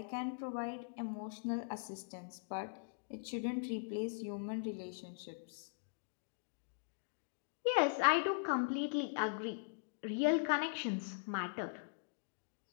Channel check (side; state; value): right; silent; digital silence